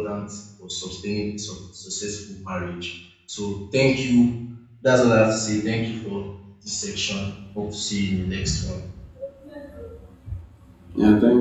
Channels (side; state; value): both; identical; correlation 1.00